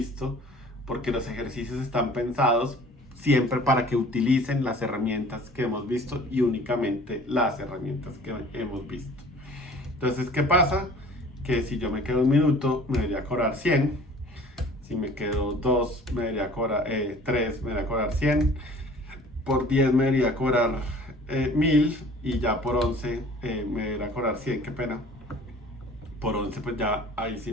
porque los ejercicios están pensados siempre para que utilicen las herramientas que hemos visto y únicamente las herramientas que hemos visto. Entonces, ¿qué pasa? Que si yo me quedo un minuto, me debería cobrar 100. Si me quedo 2, me debería cobrar 3, me debería cobrar 100. Por 10 me debería cobrar 1000. Y ya por 11 me debería cobrar 100. Qué pena. Por 11 pues ya ahí sí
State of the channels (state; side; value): normal; both; correlation 0.48